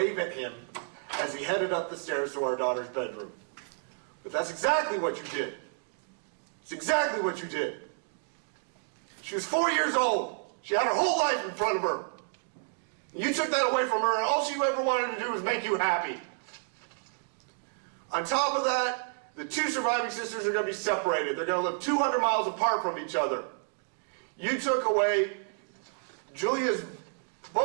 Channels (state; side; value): silent; left; 57 dB below the other